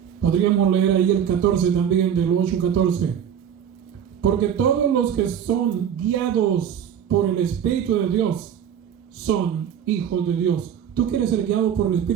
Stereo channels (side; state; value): left; quieter; 8.8 dB